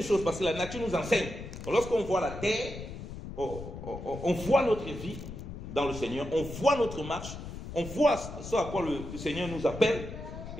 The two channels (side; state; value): left; noise; rumble, 10 dB below the sound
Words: choses, parce que la nature nous enseigne. Lorsqu'on voit la terre, on voit notre vie dans le Seigneur, on voit notre marche, on voit ce à quoi le Seigneur nous appelle.